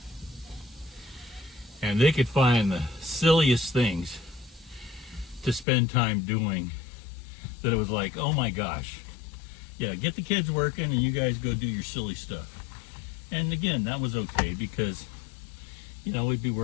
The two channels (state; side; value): drops out; right; at 5.7 s